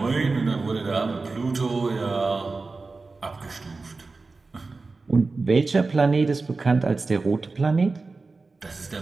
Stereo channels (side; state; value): left; quieter; 3.8 dB